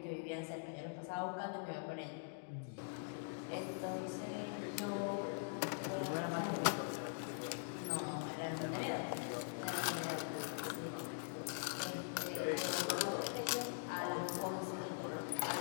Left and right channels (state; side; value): silent; right; digital silence